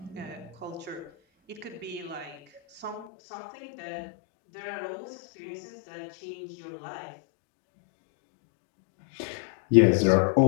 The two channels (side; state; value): right; drops out; at 3.1 s